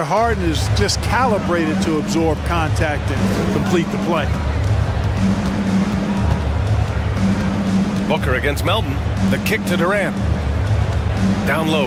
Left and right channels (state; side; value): identical; both; correlation 1.00